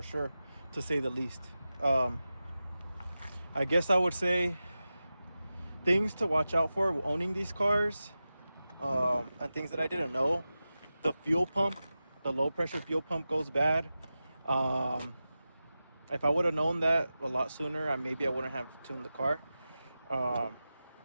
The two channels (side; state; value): both; inverted; correlation -0.94